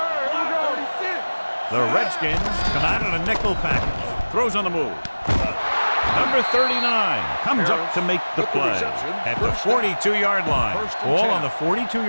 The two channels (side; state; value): both; inverted; correlation -1.00